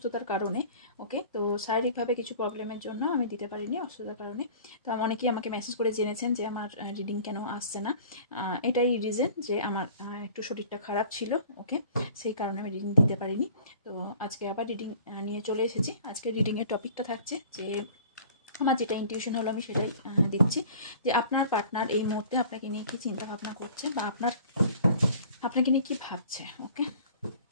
কারণে। ওকে, তো শারীরিকভাবে কিছু প্রবলেমের জন্য আমি দিতে পারিনি, অসুস্থতার কারণে। তো অনেকেই আমাকে মেসেজ করে জেনেছেন যে আমার রিডিং কেন আসছে না। এটাই রিজন যে আমার একটু শরীরটা খারাপ ছিল। ওকে, সেই কারণে আমি রিডিং দিতে পারিনি। তো আজকে আবার রিডিং নিয়ে চলে এসেছি। আজকে রিডিংয়ের টপিকটা থাকছে যে আমার যেটা ইনটিউশন হলো আমি সেটাই দিচ্ছি, যে আপনার পার্টনার এই মুহূর্তে আপনাকে নিয়ে কি চিন্তা ভাবনা করছে বা আপনাকে নিয়ে কি ভাবছে। ওকে,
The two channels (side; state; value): both; inverted; correlation -0.47